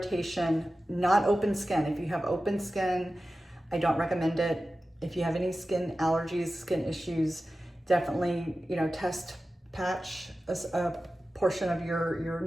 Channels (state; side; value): normal; both; correlation 0.94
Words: not open skin. If you have open skin, I don't recommend it. If you have any skin allergies, skin issues, definitely, you know, test patch a portion of your